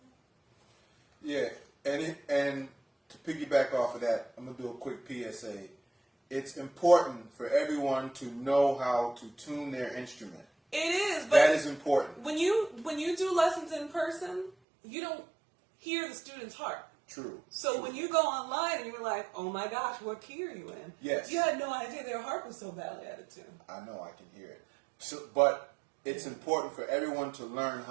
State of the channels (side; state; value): left; drops out; at 14.5 s